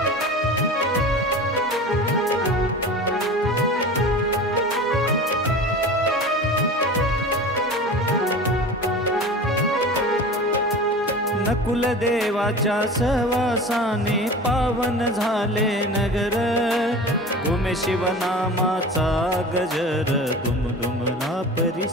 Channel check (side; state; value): both; normal; correlation 0.35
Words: नकुल देवाच्या सहवासाने पावन झाले नगर घुमे शिवनामाचा गजर दुमदुमला